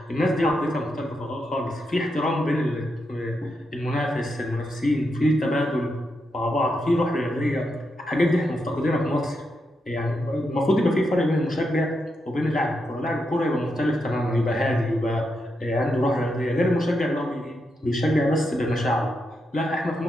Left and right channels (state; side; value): normal; both; correlation 0.84